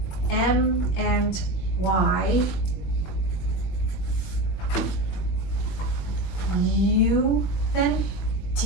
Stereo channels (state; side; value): late; right; 21 ms